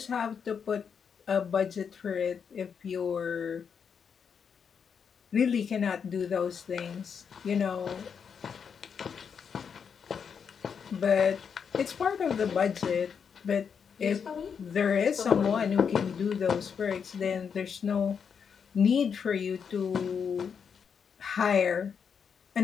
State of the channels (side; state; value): right; quieter; 6.8 dB